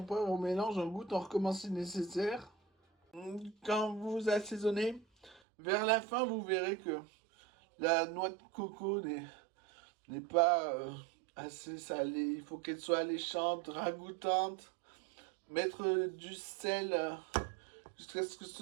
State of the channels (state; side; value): drops out; left; at 5.4 s